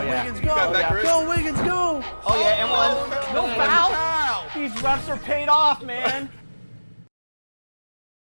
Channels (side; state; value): both; inverted; correlation -1.00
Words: go! That, Go Wiggins, go! Oh yeah, and one. No foul. These refs are paid off, man.